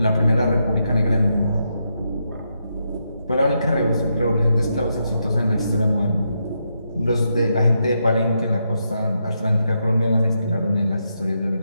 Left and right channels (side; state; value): both; inverted; correlation -0.82